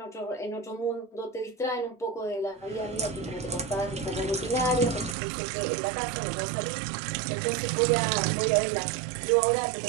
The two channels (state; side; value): drops out; left; at 5.2 s